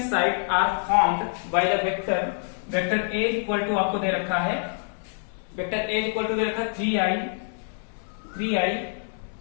sides are formed by the vector A equal to आपको दे रखा है, वेक्टर A इक्वल टू दे रखा है 3i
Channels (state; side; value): silent; right; digital silence